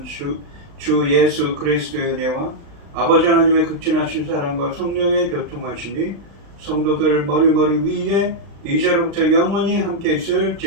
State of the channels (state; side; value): late; left; 35 ms